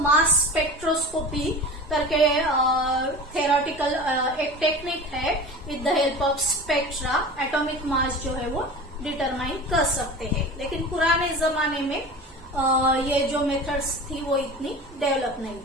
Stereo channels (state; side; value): normal; both; correlation 0.34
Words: मास स्पेक्ट्रोस्कोपी करके थेरोटिकल एक टेक्निक है, with the help of spectra atomic mass जो है वो डिटरमाइन कर सकते हैं। लेकिन पुराने जमाने में ये जो मेथड्स थी वो इतनी डेवलप नहीं